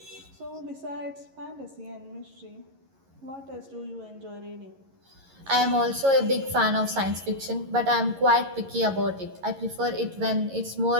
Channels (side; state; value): left; late; 11 ms